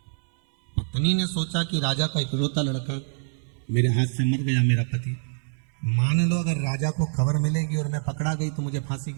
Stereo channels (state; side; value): silent; left; 61 dB below the other